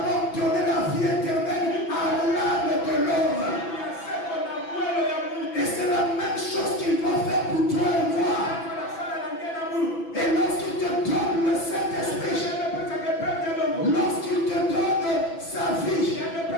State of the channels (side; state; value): right; late; 6.0 ms